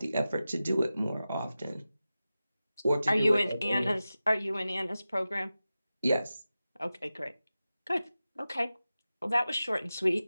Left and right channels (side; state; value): both; inverted; correlation -0.94